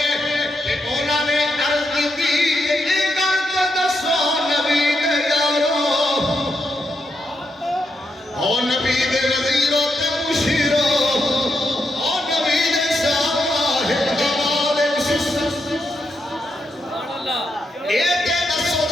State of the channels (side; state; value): both; normal; correlation 0.82